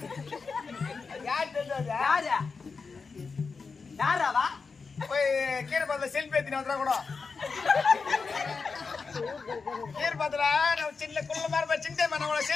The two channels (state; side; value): quieter; right; 4.8 dB